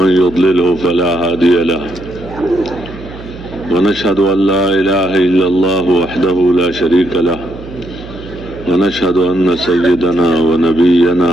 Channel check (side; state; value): right; noise; hum, 15 dB below the sound